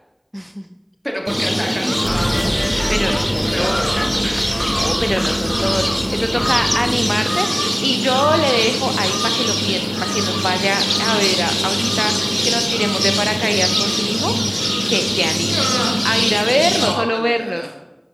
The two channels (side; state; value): both; identical; correlation 1.00